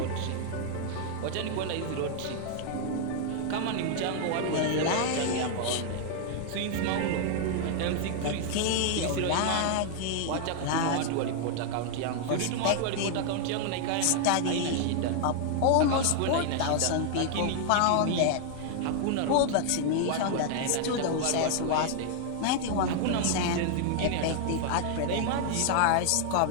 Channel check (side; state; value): both; different; correlation 0.00